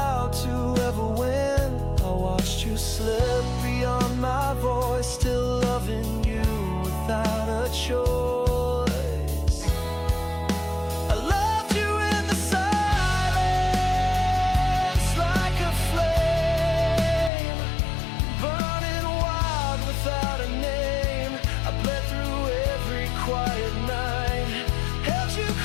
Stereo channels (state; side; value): drops out; right; at 17.3 s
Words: to ever win. I watched you slip beyond my voice, still loving you without a choice. I loved you in the silence, like a flame, burning wild without a name. I bled through every quiet night, held you